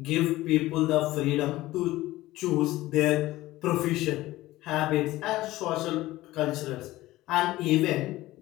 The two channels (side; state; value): right; quieter; 17.2 dB